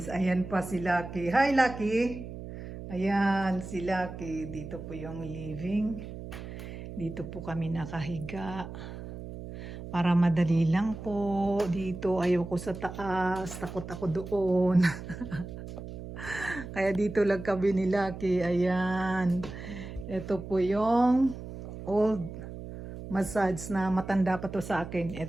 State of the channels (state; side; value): noise; right; hum, 10 dB below the sound